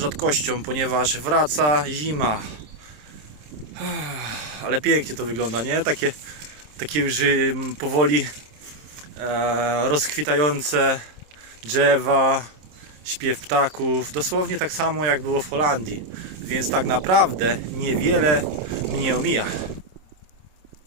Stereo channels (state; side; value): late; left; 27 ms